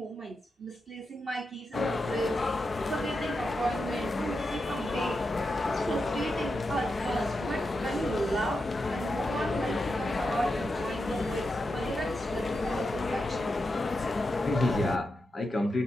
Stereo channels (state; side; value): normal; both; correlation 0.88